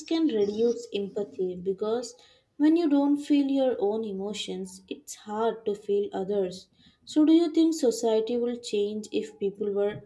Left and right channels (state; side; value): identical; both; correlation 1.00